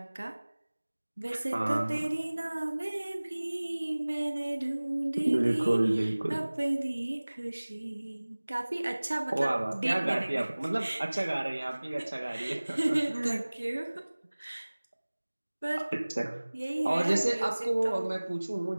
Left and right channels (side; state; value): both; inverted; correlation -1.00